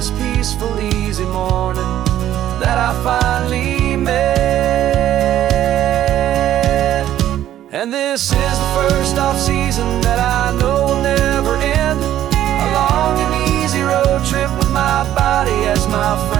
peaceful, easy morning that I finally met. And this is the first off-season that I know will never end. A long and easy road trip with my body as my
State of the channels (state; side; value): quieter; left; 12.2 dB